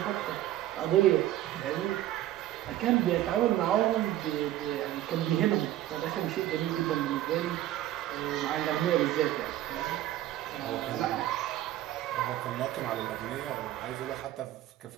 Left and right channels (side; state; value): left; quieter; 13.6 dB